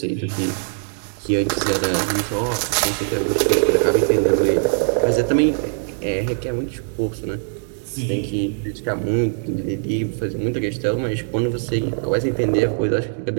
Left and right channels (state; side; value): silent; left; digital silence